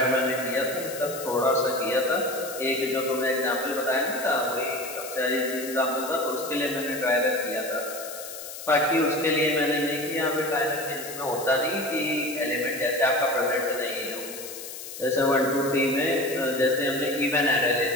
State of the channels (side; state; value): left; noise; hiss, 11 dB below the sound